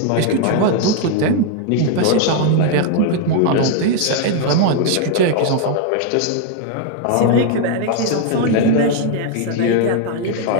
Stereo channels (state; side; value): different; both; correlation 0.00